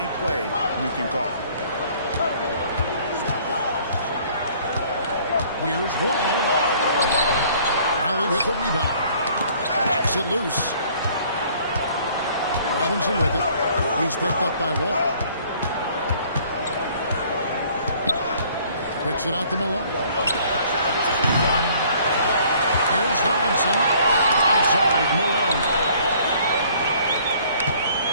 play you can call. Here's Wall. Raleigh with the rebound. Knocks it loose. Robinson with it. He's picked up by Wall. Picks it out to Malone. Here's Robinson. Outside, Malone.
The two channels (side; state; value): both; inverted; correlation -0.57